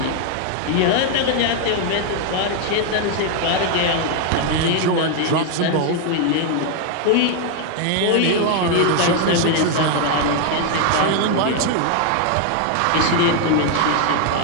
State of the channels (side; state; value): both; different; correlation 0.00